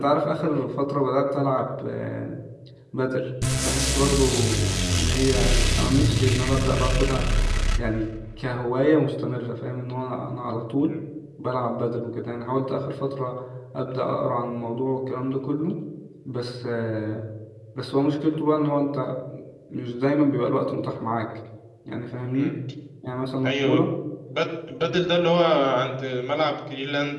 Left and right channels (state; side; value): identical; both; correlation 1.00